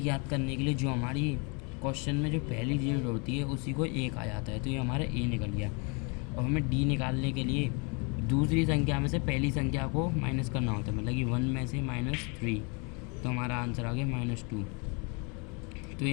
करने के लिए जो हमारी क्वेश्चन में जो पहली डिजिट होती है उसी को एक आ जाता है, तो ये हमारा ए निकल गया। और हमें डी निकालने के लिए दूसरी संख्या में से पहली संख्या को माइनस करना होता है, मतलब कि 1 में से -3, तो हमारा आंसर आ गया -2। तो ये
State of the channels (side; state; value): right; quieter; 32.7 dB